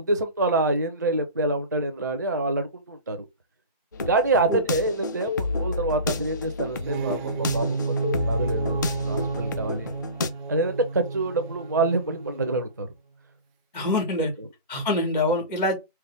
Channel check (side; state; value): both; inverted; correlation -0.35